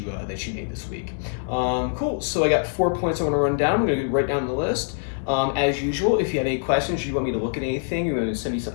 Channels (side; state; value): right; silent; digital silence